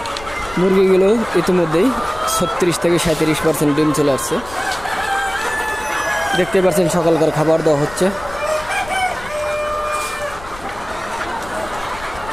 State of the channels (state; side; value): noise; left; rumble, 17 dB below the sound